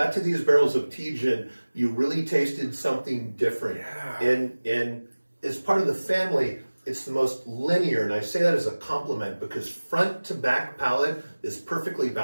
to these barrels of Tejan, you really tasted something different. Yeah. And as part of the family, it's the most linear, and I say that as a compliment because front to back palate is perfectly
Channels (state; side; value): inverted; both; correlation -1.00